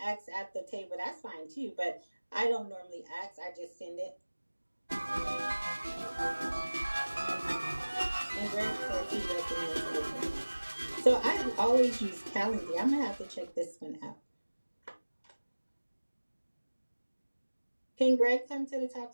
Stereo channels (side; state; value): both; inverted; correlation -1.00